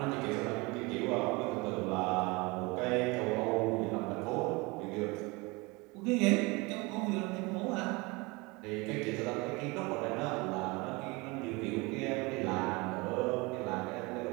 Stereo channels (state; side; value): quieter; left; 25.7 dB